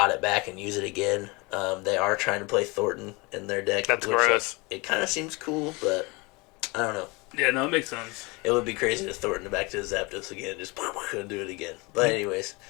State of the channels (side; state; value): right; quieter; 26.3 dB